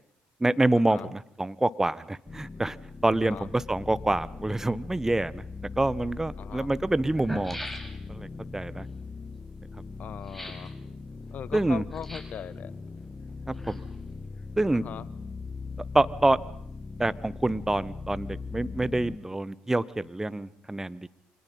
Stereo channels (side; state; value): both; normal; correlation 0.97